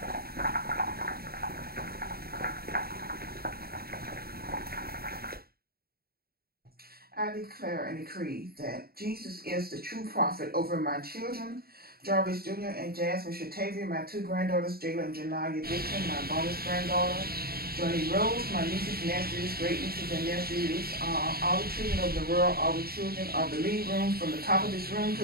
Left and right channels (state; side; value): late; left; 0.45 ms